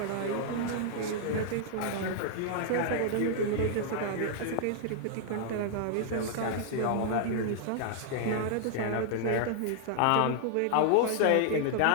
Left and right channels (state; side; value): different; both; correlation 0.00